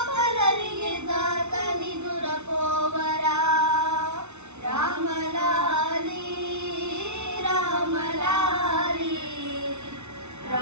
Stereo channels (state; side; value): late; left; 0.82 ms